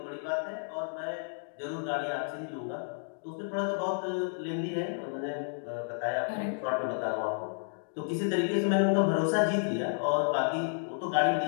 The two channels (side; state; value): right; silent; digital silence